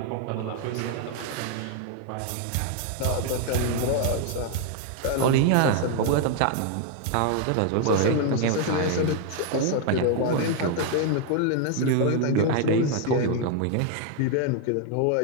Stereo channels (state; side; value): different; both; correlation 0.00